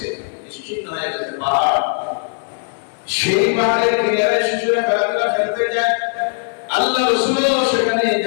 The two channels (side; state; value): right; silent; digital silence